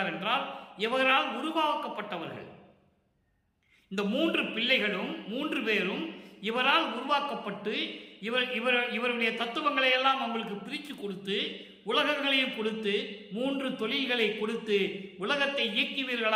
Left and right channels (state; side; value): identical; both; correlation 1.00